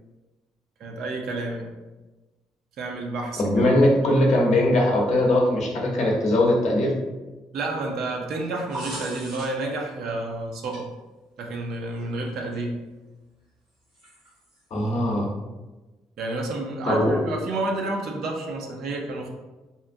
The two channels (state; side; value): normal; both; correlation 0.75